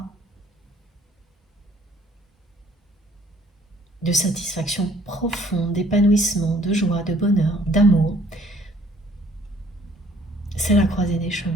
de satisfaction profonde, d'épanouissement, de joie, de bonheur, d'amour, c'est la croisée des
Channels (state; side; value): normal; both; correlation 0.59